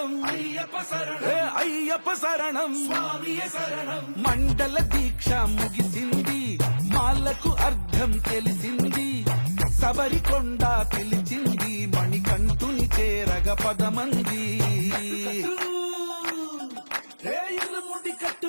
ஐயப்ப சரணம் అయ్యప్ప శరణం స్వామియ శరణం మండల దీక్ష ముగిసింది మాలకు అర్థం తెలిసింది శబరికొండ పిలిచింది మణికంఠుని చేరగ పదమంది ఇరుముడి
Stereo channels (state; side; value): inverted; both; correlation -1.00